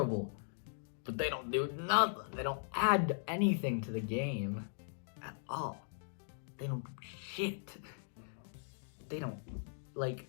But they don't do nothing. They don't add anything to the game at all. They don't do shit. They don't,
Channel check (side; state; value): right; silent; digital silence